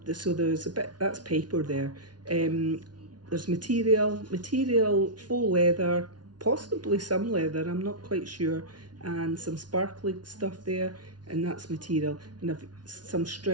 So there's a bit, that's paper there. There's material, faux leather, possibly some leather, I'm not quite sure, and some sparkly stuff there, and that's material. And I've some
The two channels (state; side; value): late; left; 0.69 ms